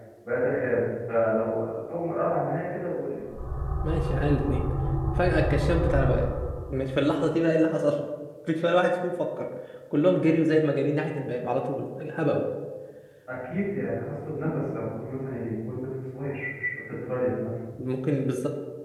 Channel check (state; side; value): identical; both; correlation 1.00